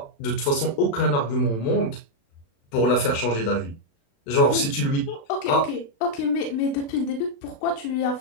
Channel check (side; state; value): right; late; 36 ms